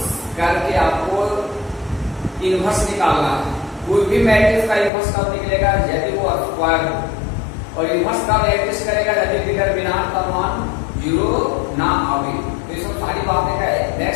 करके आपको इनवर्स निकालना है। कोई भी मैट्रिक्स का इनवर्स कब निकलेगा, यदि वो स्क्वायर हो। और इनवर्स कब एग्जिस्ट करेगा, यदि डिटरमिनेंट का मान 0 ना आवे। तो ये सब सारी बातें का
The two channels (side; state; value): right; drops out; at 4.9 s